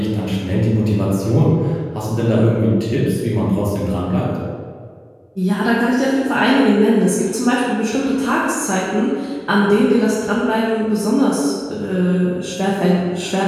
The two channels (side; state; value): both; identical; correlation 1.00